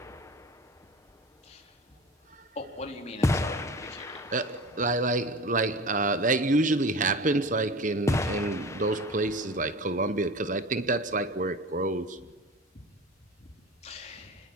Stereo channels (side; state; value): both; normal; correlation 0.34